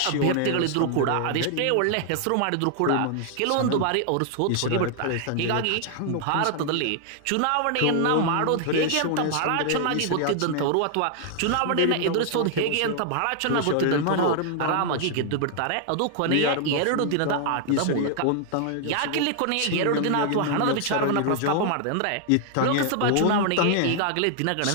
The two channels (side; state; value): both; different; correlation 0.00